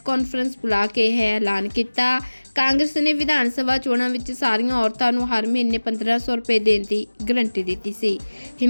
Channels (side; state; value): both; inverted; correlation -1.00